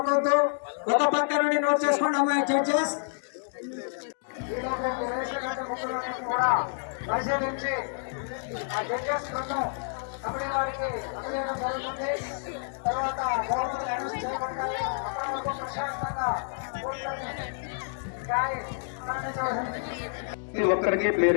ఒక పక్క నుండి నోట్ చేసుకోండి అమ్మాయి జడ్జెస్. కూడా పరిశీలించి ఆ జడ్జెస్ బృందం కమిటీ వారికి అందజేయడం జరుగుతుంది. తర్వాత గవర్నమెంట్ అనౌన్స్ చేయబడతాయి. అప్పటి వరకు ప్రశాంతంగా కూర్చొని ఒక్కరికి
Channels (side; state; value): right; silent; digital silence